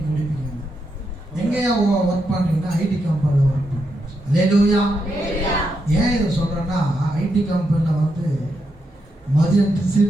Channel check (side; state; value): both; normal; correlation 0.82